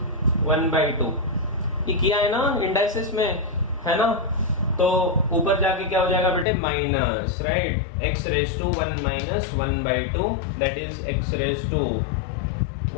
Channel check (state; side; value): drops out; right; at 6.5 s